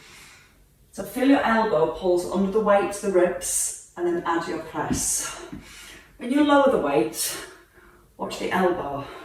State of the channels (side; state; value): both; identical; correlation 1.00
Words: So feel your elbow pulls under the weight to the ribs, and then add your press. When you lower the weight, watch the elbow.